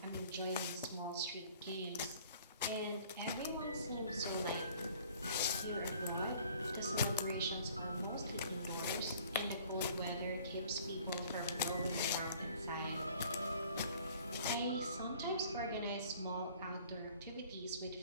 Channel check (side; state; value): both; inverted; correlation -0.53